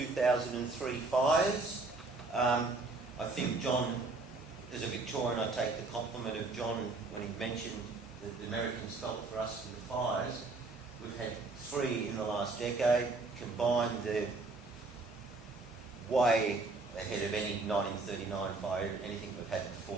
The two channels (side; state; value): left; quieter; 3.6 dB